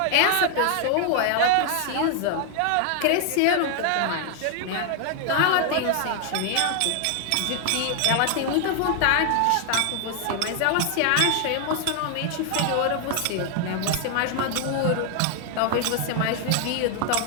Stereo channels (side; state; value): both; different; correlation 0.00